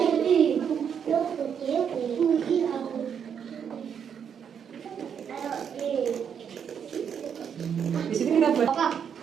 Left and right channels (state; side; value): quieter; left; 7.7 dB